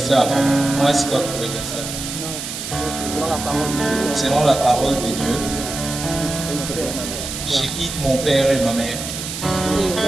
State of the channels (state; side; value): noise; right; hiss, 7 dB below the sound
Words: Moi, Scott Kodiasala. Selon la parole de Dieu, je quitte mon père et ma mère.